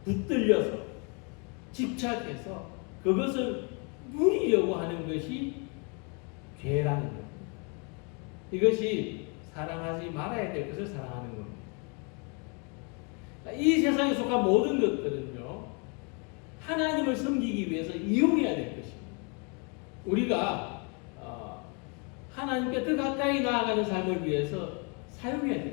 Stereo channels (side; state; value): right; quieter; 34.8 dB